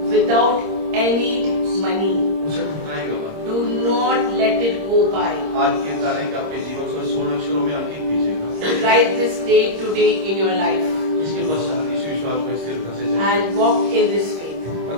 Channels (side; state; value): left; late; 26 ms